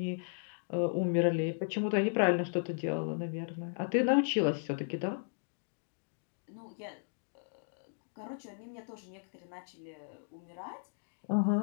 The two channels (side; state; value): right; silent; digital silence